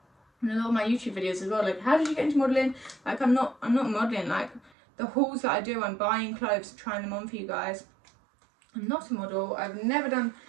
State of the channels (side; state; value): left; drops out; at 4.7 s